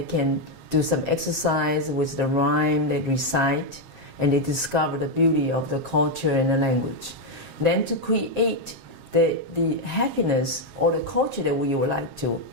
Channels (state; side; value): late; left; 7.5 ms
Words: can do some exercise with the rhyme they recite, and they discover the beauty of the culture and the language. Then to create the happiness or the culture that we would like to,